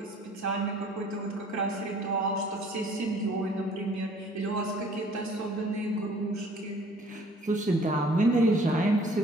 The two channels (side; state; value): both; normal; correlation 0.55